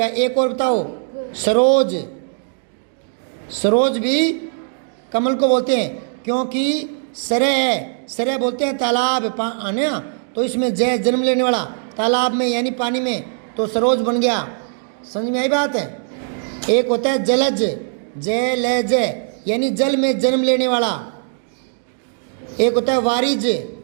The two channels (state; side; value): silent; left; digital silence